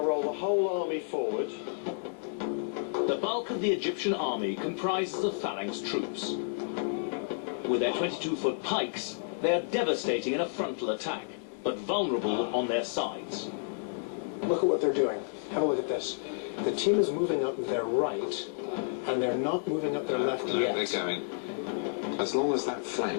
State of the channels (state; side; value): silent; right; digital silence